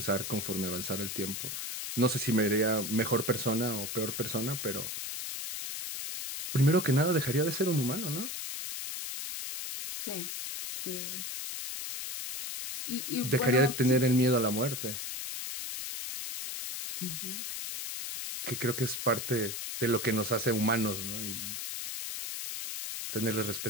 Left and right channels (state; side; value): noise; left; hiss, 5 dB below the sound